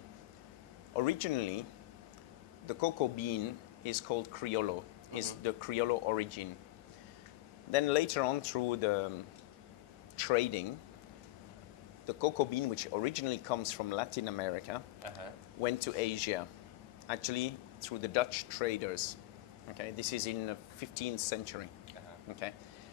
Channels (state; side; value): quieter; right; 17.9 dB